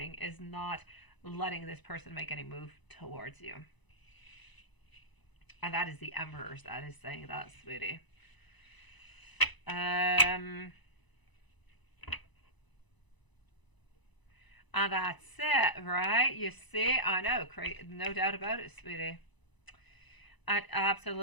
is not letting this person make any move towards you. And that is the Emperors that is saying that, sweetie. And that's it, right? You see, I know, no doubt about it, sweetie.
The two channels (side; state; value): right; late; 1.0 ms